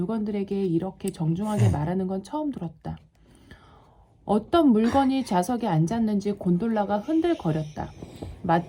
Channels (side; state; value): both; identical; correlation 1.00